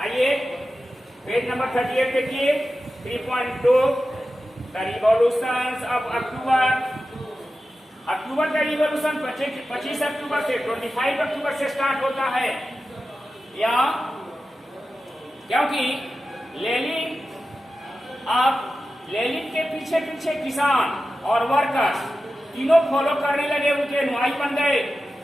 पेज नंबर 38 देखिए, 3.2 द रिवॉल्यूशन ऑफ अक्टूबर का रिवॉल्यूशन 25 अक्टूबर से 25 अक्टूबर से स्टार्ट होता है। या क्योंकि लेनिन के पीछे पीछे किसान और वर्कर्स तीनों फॉलो करने लगे, उनके अनुयायी बन गए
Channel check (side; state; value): both; normal; correlation 0.93